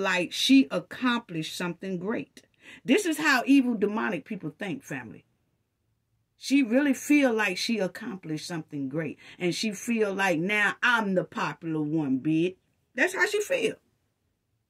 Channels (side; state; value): both; identical; correlation 1.00